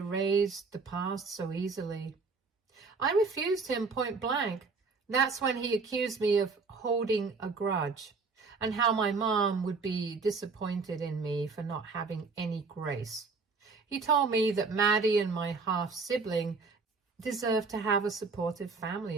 the past so easily. I refused him point blank. That's when he accused me of holding a grudge, and how my mom would be disappointed in me for not having any grace. He told me that Maddie and my half-sibling deserved to have a supportive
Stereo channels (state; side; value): quieter; left; 4.4 dB